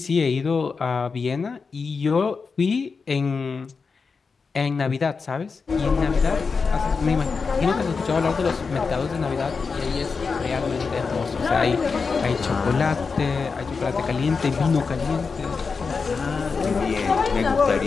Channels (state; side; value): quieter; right; 5.0 dB